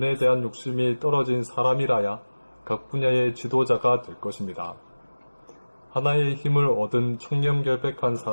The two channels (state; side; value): inverted; both; correlation -1.00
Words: 대한 욕심이 떨어진 사람이라야 각 분야의 지도자가 될 것입니다. 하나의 힘을 얻은 청렴결백한